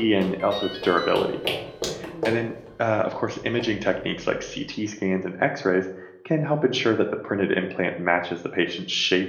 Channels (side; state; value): both; identical; correlation 1.00